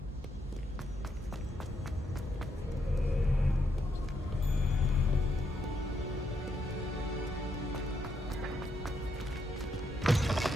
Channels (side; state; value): both; normal; correlation 0.78